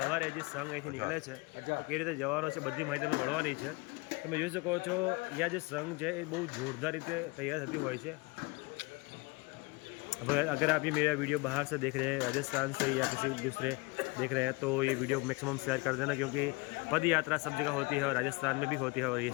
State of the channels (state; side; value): quieter; right; 25.8 dB